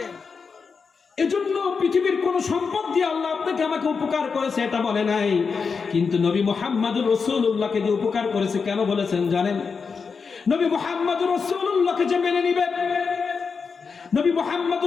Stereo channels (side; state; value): right; quieter; 5.3 dB